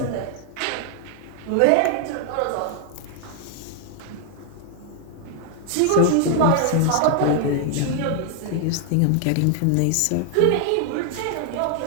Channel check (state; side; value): different; both; correlation 0.00